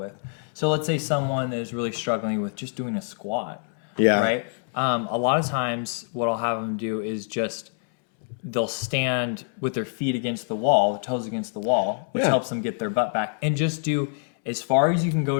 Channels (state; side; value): silent; right; 61 dB below the other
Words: So let's say someone is really struggling with just doing a squat. Right? A lot of times what I'll have them do is they'll stand with their feet against the wall, the toes against the wall, which helps them get their butt back, and just do as far as you can